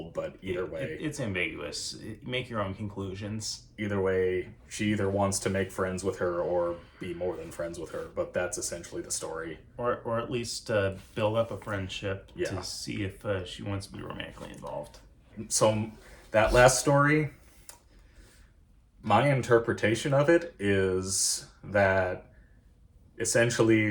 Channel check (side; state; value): both; identical; correlation 1.00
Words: but either way. It's ambiguous. Make your own conclusions. Either way, she either wants to make friends with her or be more than friends with her, but that's essentially the story. Or at least build up a friendship Yeah. to see if she wants to be romantically involved. So that last story, my interpretation of it is that